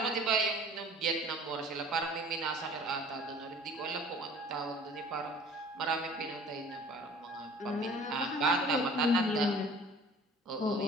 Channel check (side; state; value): both; normal; correlation 0.48